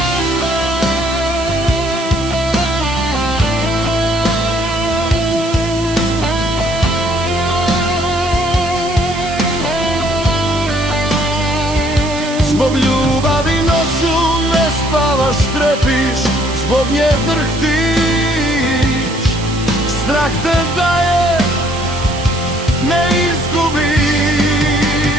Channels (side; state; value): right; noise; hiss, 13 dB below the sound